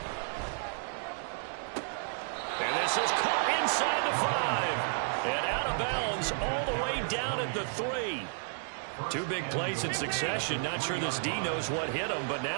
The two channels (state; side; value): silent; left; digital silence